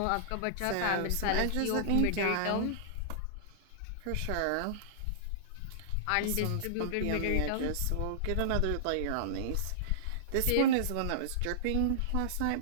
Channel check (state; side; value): different; both; correlation -0.02